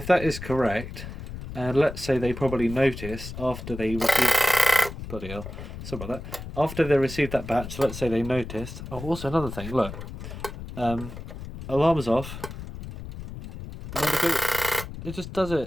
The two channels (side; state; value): left; noise; rumble, 10 dB below the sound